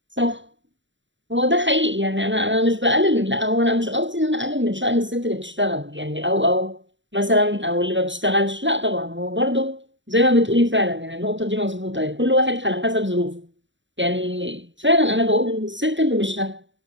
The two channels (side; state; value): left; late; 0.54 ms